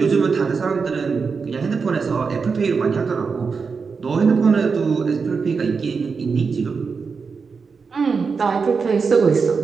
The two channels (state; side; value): quieter; left; 5.2 dB